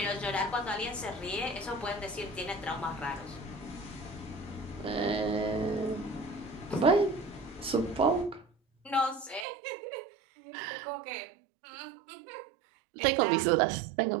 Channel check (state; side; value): drops out; left; at 9.5 s